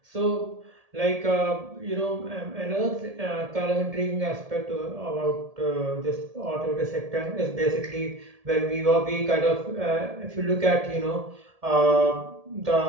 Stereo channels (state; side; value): late; left; 1.7 ms